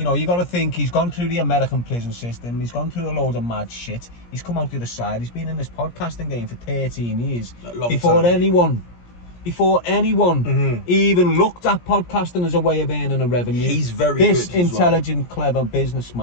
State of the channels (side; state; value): right; late; 17 ms